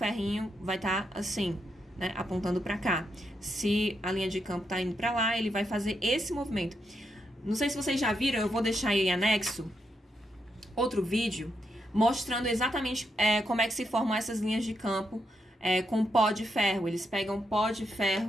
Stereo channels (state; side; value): normal; both; correlation 0.82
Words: vai estar assim, né? Apontando para cá. Se a linha de campo tá indo para lá, ele vai fazer esse movimento. Não sei se vocês já viram, eu vou deixar aí em anexo outro vídeo mostrando exatamente como é que se formam essas linhas de campo com pó de ferro. Eles pegam pó de